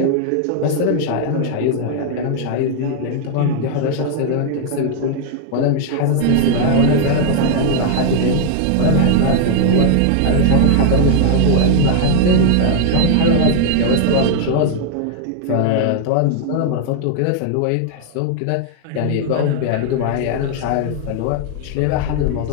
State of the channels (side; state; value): both; different; correlation 0.00